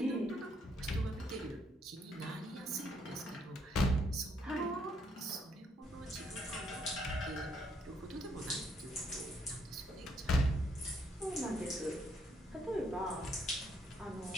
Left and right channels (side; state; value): both; normal; correlation 0.71